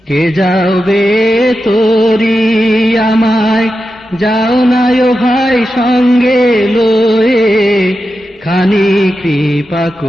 কে যাবে তোরি আমায়, যাও না ও ভাই সঙ্গে লয়ে, খানি কৃপা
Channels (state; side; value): normal; both; correlation 0.90